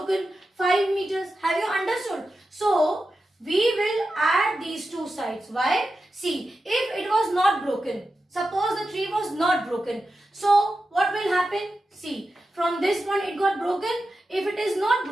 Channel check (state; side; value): normal; both; correlation 0.91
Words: 5 meters. Have you understood? So we will add these two sides. Why? See, if it was not broken, suppose the tree was not broken. So what will happen? See, from this point it got broken. If it is not